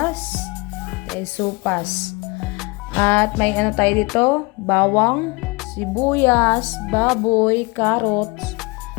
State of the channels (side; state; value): right; quieter; 26.6 dB